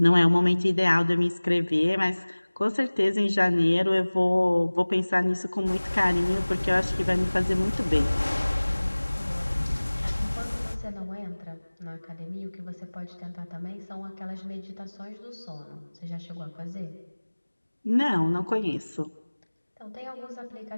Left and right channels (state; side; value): inverted; both; correlation -1.00